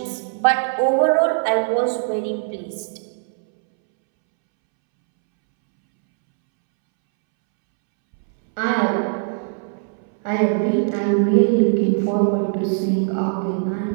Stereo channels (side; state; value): left; silent; 65 dB below the other